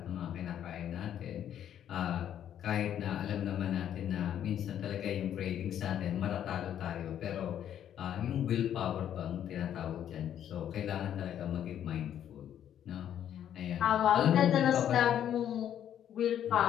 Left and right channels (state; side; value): quieter; right; 10.2 dB